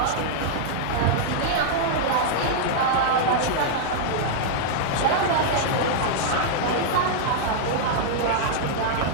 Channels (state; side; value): different; both; correlation -0.02